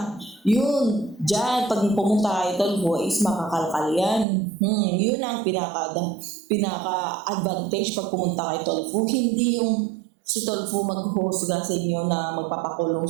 Yun, dyan, pag pumunta kayo Tolfo is makakalkal yan. Yun ang pinaka-advantage pag pumunta kayo Tolfo. Hindi yung si Tolfo maghusga sa inyo na magpapakulong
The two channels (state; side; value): drops out; left; at 4.2 s